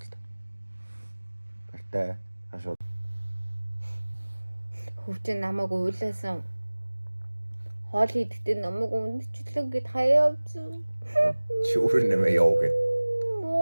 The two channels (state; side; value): inverted; both; correlation -1.00